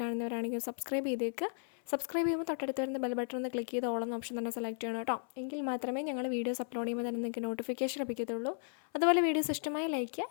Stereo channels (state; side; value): silent; right; 54 dB below the other